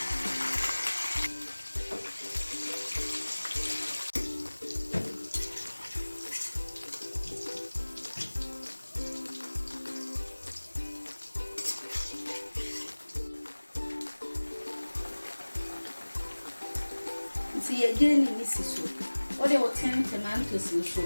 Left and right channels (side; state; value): both; inverted; correlation -1.00